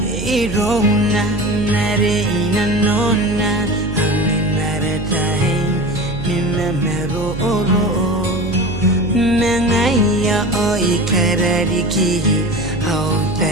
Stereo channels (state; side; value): noise; right; hum, 8 dB below the sound